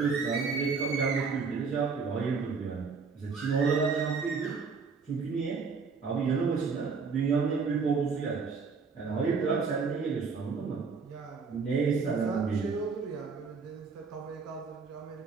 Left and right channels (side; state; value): left; quieter; 5.1 dB